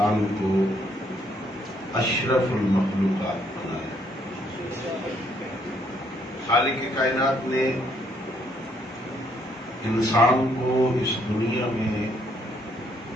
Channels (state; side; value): normal; both; correlation 0.70